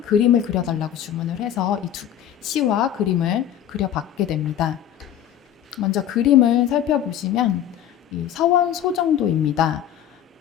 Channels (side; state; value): right; quieter; 10.5 dB